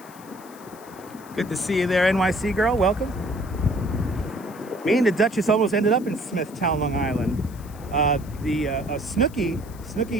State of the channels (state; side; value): noise; left; hiss, 22 dB below the sound